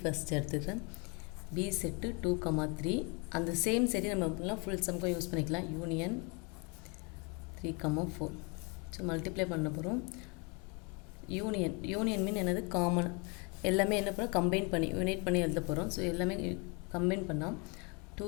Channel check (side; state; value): right; quieter; 32.5 dB